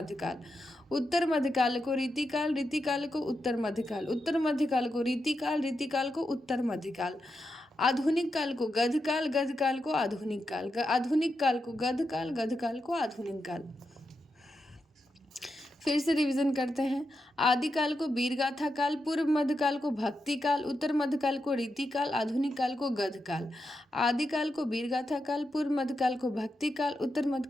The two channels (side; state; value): both; normal; correlation 0.87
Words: उत्तर मध्यकाल को रीतिकाल, रीतिकाल को उत्तर मध्यकाल, उत्तर मध्यकाल को रीतिकाल, रीतिकाल को उत्तर मध्यकाल। आधुनिक काल को गधकाल, गधकाल को आधुनिक काल, आधुनिक काल को गधकाल, गधकाल को आधुनिक काल। फिर से रिवीजन करते हैं। आदिकाल को वीरगाथा काल, पूर्व मध्यकाल को भक्ति काल, उत्तर मध्यकाल को रीतिकाल, आधुनिक काल को गधकाल। आदिकाल को वीरगाथा काल, पूर्व मध्यकाल को भक्ति काल, उत्तर